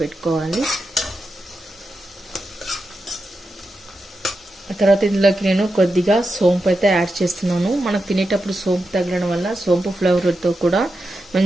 ఆ తర్వాత ఇందులోకి నేను కొద్దిగా సోంపు అయితే యాడ్ చేస్తున్నాను. మనకు తినేటప్పుడు సోంపు తగలడం వల్ల సోంపు ఫ్లేవర్తో కూడా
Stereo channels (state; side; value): normal; both; correlation 0.89